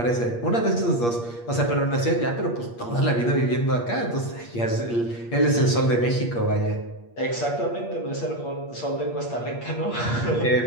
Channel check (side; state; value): right; late; 8.5 ms